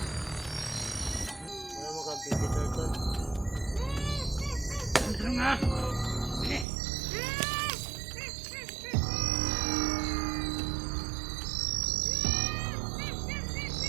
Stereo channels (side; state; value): left; drops out; at 6.7 s